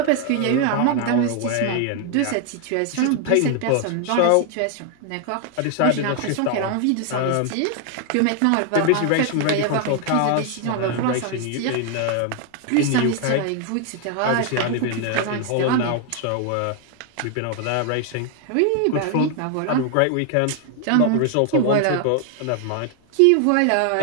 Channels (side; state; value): both; different; correlation 0.00